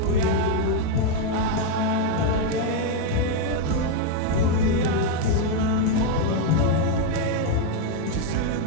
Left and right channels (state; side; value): different; both; correlation 0.02